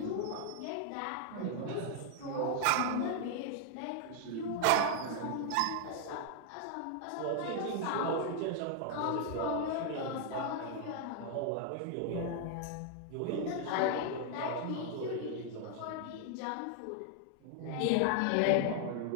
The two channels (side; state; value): both; different; correlation 0.00